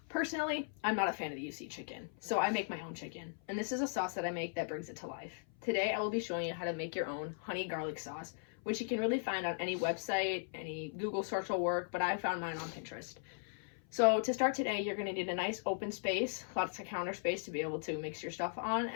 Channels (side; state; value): right; silent; 53 dB below the other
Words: Personally, I'm not a fan of the UC chicken, so I make my own chicken. And this is a sauce that I make that brings it to life. Today, I will be showing you how to make your own honey garlic sauce, which you can really find on any website, any Google search will work, but I found mine on Pinterest. So to start today, you're going to need a nice open space, lots of counter space to be able to mix your stuff on,